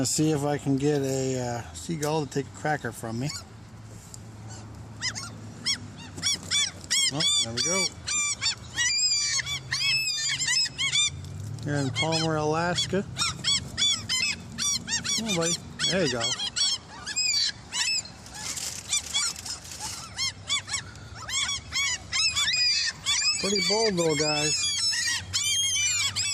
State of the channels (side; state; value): right; noise; hum, 29 dB below the sound